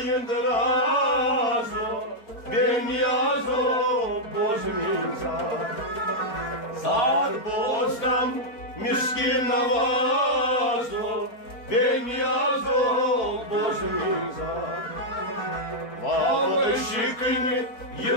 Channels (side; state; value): right; late; 4.6 ms